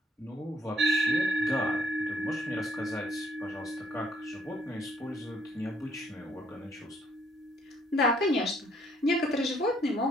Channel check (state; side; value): normal; both; correlation 0.67